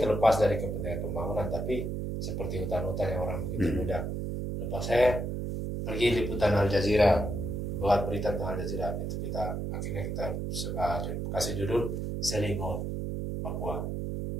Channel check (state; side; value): noise; right; hum, 3 dB below the sound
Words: dari kepentingan pembangunan, tapi seperti hutan-hutan yang orang begitu mudah. Lepas saya pergi liputan Al Jazeera, buat berita tentang Al Jazeera, itu akhirnya kita kasih judul Selling Out Papua,